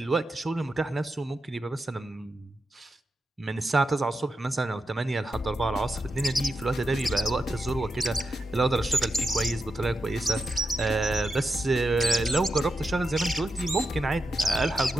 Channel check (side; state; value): both; normal; correlation 0.87